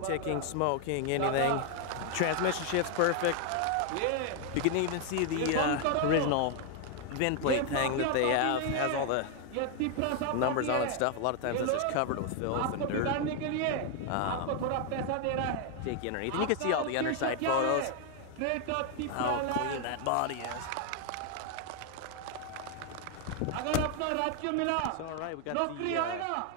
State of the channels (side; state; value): both; different; correlation 0.00